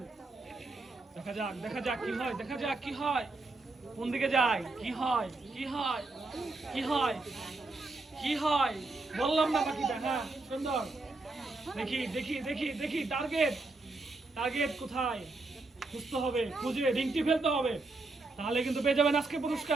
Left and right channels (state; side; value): quieter; left; 3.4 dB